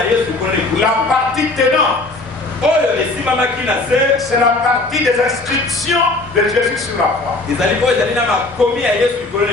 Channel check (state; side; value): quieter; right; 3.1 dB